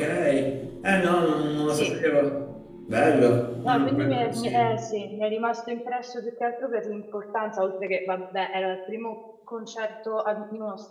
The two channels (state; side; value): identical; both; correlation 1.00